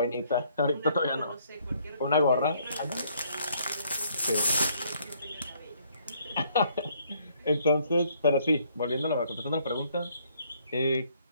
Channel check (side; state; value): both; inverted; correlation -0.66